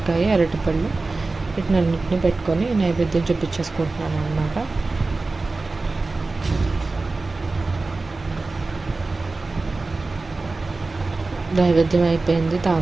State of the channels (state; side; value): quieter; left; 3.5 dB